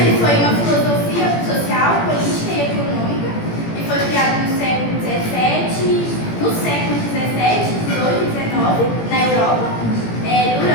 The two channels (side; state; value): right; late; 17 ms